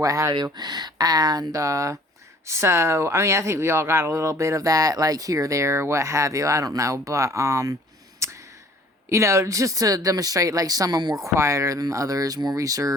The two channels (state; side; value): normal; both; correlation 0.54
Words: have you, and so I mean, I think we all got a little bit of that, like here, there, what have you. I don't know, but you know, just to demonstrate like some are more quieter than others, more